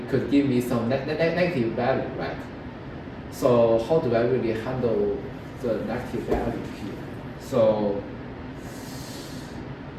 could give me some negative value, right? So how do I really handle the negative value here? So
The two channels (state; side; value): identical; both; correlation 1.00